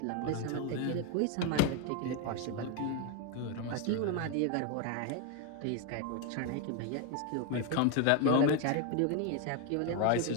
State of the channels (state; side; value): different; both; correlation 0.02